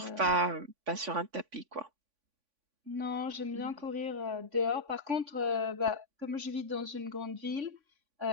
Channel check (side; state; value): left; late; 3.5 ms